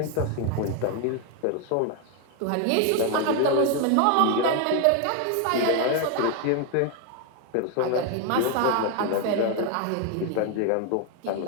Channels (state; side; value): different; both; correlation 0.01